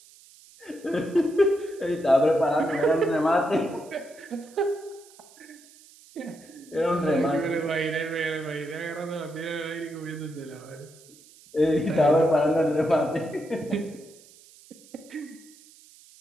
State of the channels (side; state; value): right; noise; hiss, 24 dB below the sound